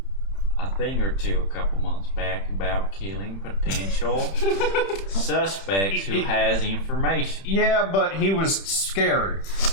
a thing or two a couple months back about killing potential suspects who has information. Yeah, but he was scared.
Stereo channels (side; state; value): right; late; 31 ms